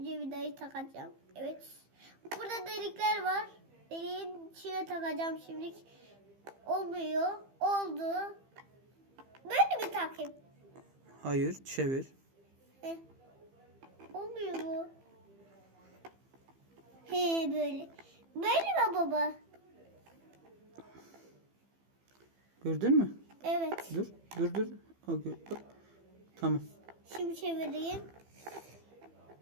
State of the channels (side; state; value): left; late; 15 ms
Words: vidayı takacağım. Evet. Burada delikler var. Deliğin içine takacağım şimdi. Olmuyor. Oldu. Böyle mi takayım? Hayır, çevir. Heh. Olmuyor bu. He böyle. Böyle mi baba? Gördün mü? Evet. Dur. Bak. Tamam. Şimdi çevireyim.